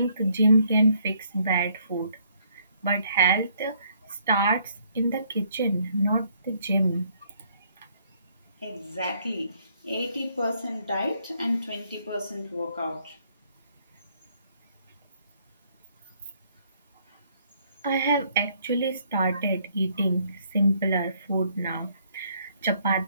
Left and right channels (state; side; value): inverted; both; correlation -0.67